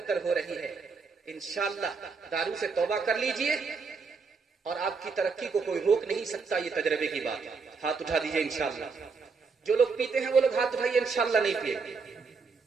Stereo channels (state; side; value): quieter; left; 4.9 dB